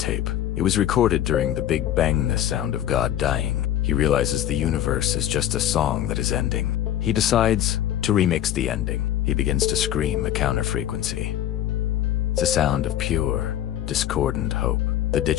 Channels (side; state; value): right; quieter; 11.5 dB